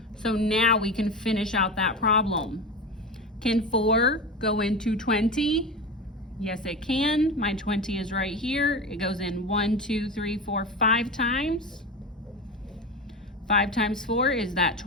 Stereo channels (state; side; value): normal; both; correlation 0.24